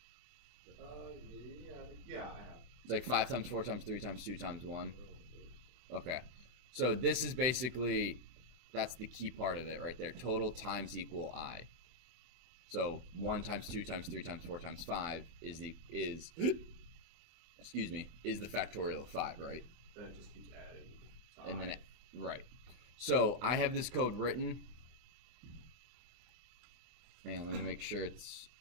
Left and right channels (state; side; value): late; left; 24 ms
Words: Yeah, I have. It's like 5 times 4 times 3 times 2 times 1. Okay. So this is basically, that's the key part of it right there. Total times equal I. So 1 times 2 times 3 times 4 times 5 is the factorial of 5, right? Then it just keeps adding. And then right. So I have this code written. Man, let me make sure it's